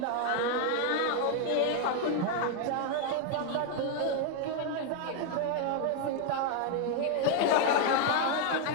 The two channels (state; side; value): different; both; correlation 0.00